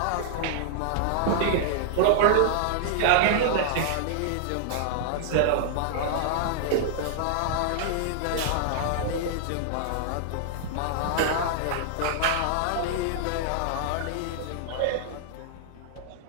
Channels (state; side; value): different; both; correlation -0.01